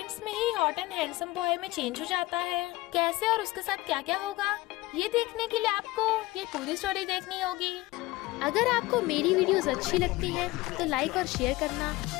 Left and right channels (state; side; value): quieter; right; 20.0 dB